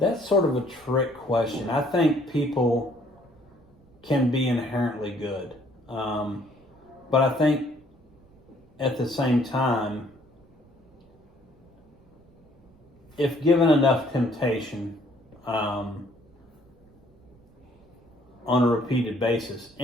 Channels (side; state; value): right; noise; rumble, 30 dB below the sound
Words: trick question. I think people can be inherently good, but I think at the same time, if given enough temptation on a repeated basis,